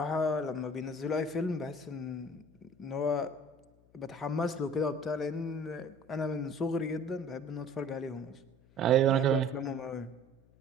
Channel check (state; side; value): noise; left; hum, 29 dB below the sound